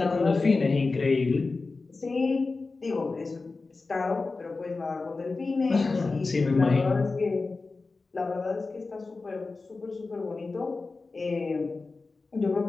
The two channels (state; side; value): quieter; right; 3.9 dB